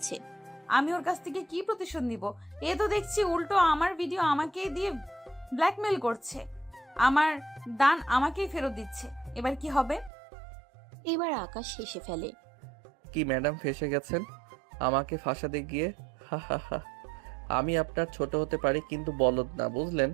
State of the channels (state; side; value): drops out; left; at 10.1 s